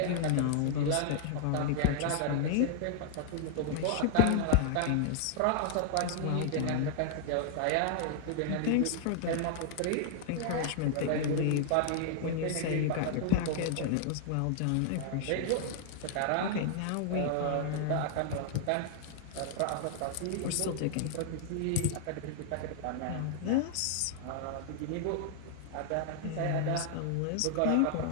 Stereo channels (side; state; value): both; different; correlation 0.00